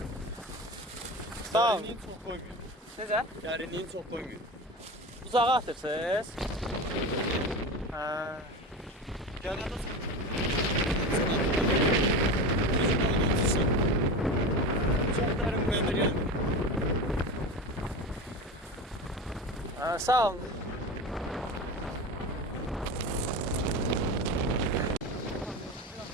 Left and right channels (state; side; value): normal; both; correlation 0.26